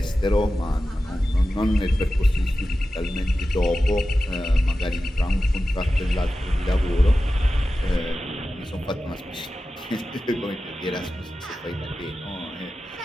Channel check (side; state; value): both; normal; correlation 0.93